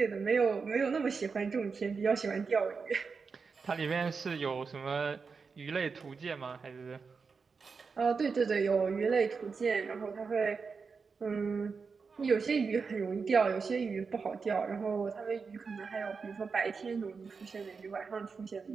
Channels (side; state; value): left; quieter; 5.1 dB